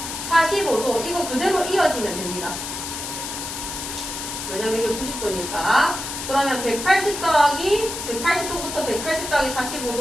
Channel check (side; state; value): left; noise; hiss, 6 dB below the sound